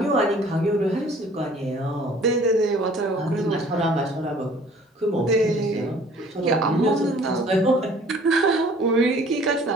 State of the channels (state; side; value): normal; both; correlation 0.53